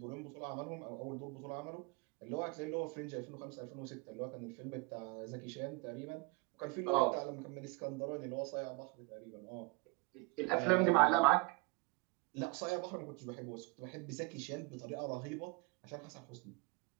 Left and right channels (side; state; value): left; quieter; 25.2 dB